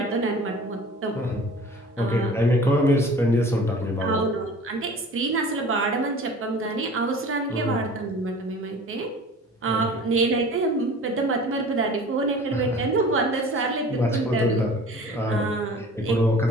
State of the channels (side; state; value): both; normal; correlation 0.43